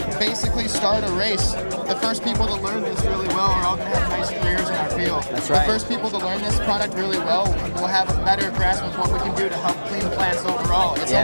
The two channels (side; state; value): both; inverted; correlation -1.00